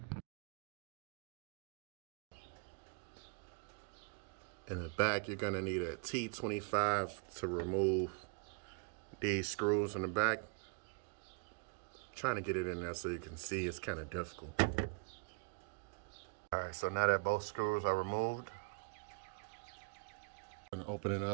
In the back, you're gonna need a T25 to remove these screws in the back. Trying to get it in there so you can see, it's kind of difficult. All right, so now that both screws are removed, I'm gonna open it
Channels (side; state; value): left; quieter; 36.1 dB